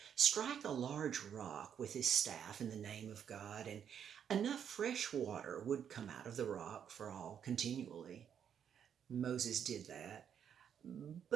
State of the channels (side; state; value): left; quieter; 8.4 dB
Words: strike a large rock with his staff in the name of God, and enough fresh water would come out of the rock for all continually. Moses did that,